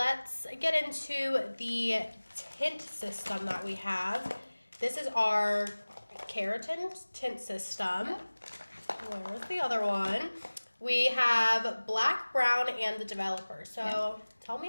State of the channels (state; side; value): inverted; both; correlation -1.00